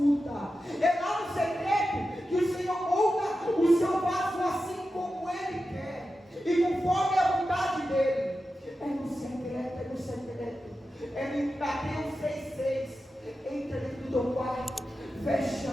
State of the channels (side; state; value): both; normal; correlation 0.91